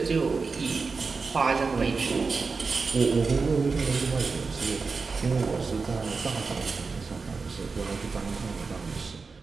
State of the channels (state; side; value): quieter; left; 4.5 dB